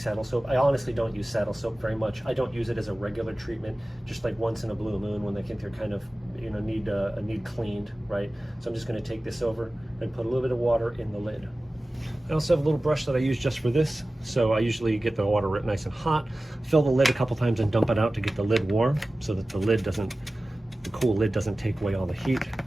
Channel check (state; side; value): normal; both; correlation 0.96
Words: soap. I honestly don't use saddle soap very much. I don't use it as a regular treatment, just like once in a blue moon when they think they're kind of, you know, need cleaned, right? So I'm just going to take this over and put a little bit of water in the lid. I also have a little brush that I use just for this. So I usually get the water nice and hot, fill the lid a couple times and dump it out to get the lid warm so that the cool lid doesn't take away all the heat.